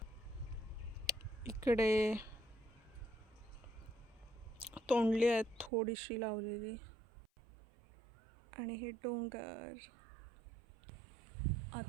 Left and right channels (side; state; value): left; drops out; at 5.7 s